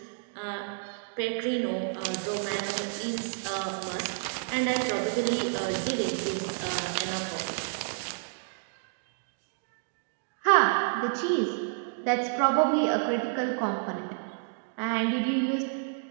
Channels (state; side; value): silent; left; digital silence